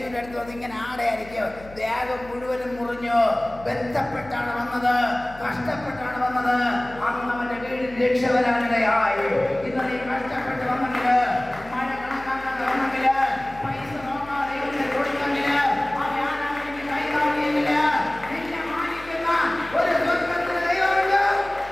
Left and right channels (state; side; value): noise; left; hum, 19 dB below the sound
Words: അടുത്ത് വന്ന് ഇങ്ങനെ ആടയായിരിക്കും. ദേഹം മുഴുവനും മുറിഞ്ഞു. ബന്ധപ്പെട്ടാണ് വന്നത്, കഷ്ടപ്പെട്ടാണ് വന്നത്. അന്ന് അവൻ്റെ വീടിൽ രക്ഷ വരാനിടയായി. ഇന്ന് നീ കഷ്ടപ്പെട്ട് വന്നെങ്കിൽ, മഴ കണക്കാക്കാതെ വന്നെങ്കിൽ, പൈസ നോക്കാതെ കൊടുത്തെങ്കിൽ, കൈകാണിയെങ്കിൽ നിന്നെ മാനിക്കുന്ന ഒരു സ്വർഗ്ഗത്തിലെ ദൈവമുണ്ട്.